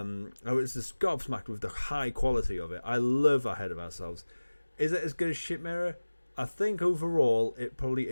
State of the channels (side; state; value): both; inverted; correlation -1.00